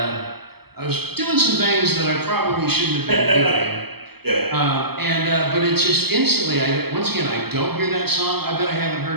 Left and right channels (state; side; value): late; left; 0.96 ms